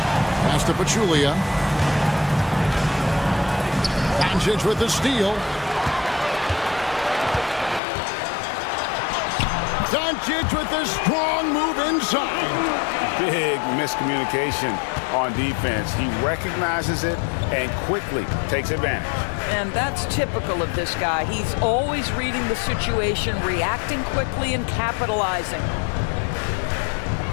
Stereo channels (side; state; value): right; drops out; at 7.8 s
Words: Pass to Pachulia. Doncic with the steal. Doncic with the strong move inside. Big miscommunication on defense. He recognizes it and quickly takes advantage. And that's typical of this guy. He's always reading the situation, reacting quickly and capitalizing.